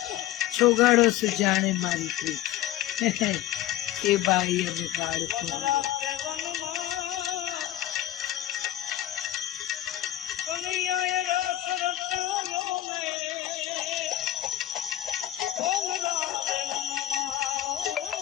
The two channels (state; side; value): quieter; right; 13.4 dB